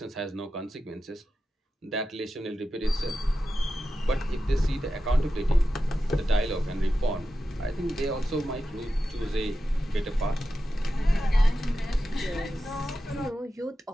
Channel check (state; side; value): normal; both; correlation 0.91